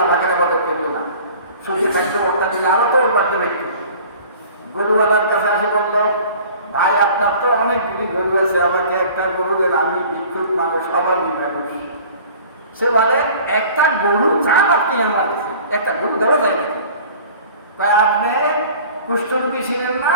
পাকের ইবাদত করলো না। সুখে থাকতে ওটা দিলে আরো তো ওর বাড়তে ব্যক্তি গরুওয়ালার কাছে আসে বললো, ভাই আপনার তো অনেকগুলি গরু আছে, আমাকে একটা গরু দেন, আমি ভিক্ষুক মানুষ, অভাবী মানুষ। সে বলে, একটা গরু চান আপনি আমার কাছে? একটা গরু দেওয়া যায় নাকি? আপনি কুষ্ঠরোগী ছিলেন না?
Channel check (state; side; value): inverted; both; correlation -0.46